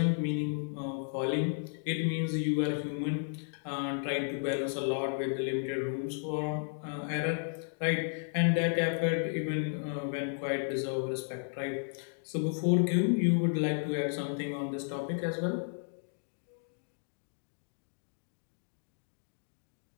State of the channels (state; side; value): silent; right; digital silence